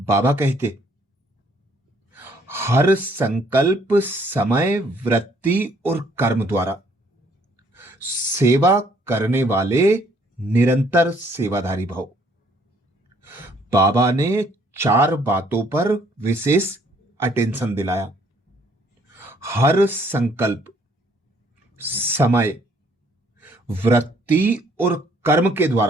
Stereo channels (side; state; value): both; normal; correlation 0.64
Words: बाबा कहते हर संकल्प, समय, वृत्ति और कर्म द्वारा सेवा करने वाले निरंतर सेवाधारी भाव। बाबा ने 4 बातों पर विशेष अटेंशन दिलाया। हर संकल्प, समय, वृत्ति और कर्म के